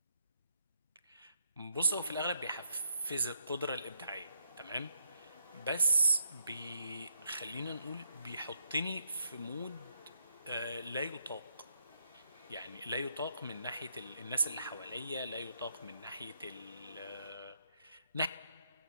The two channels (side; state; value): both; inverted; correlation -0.76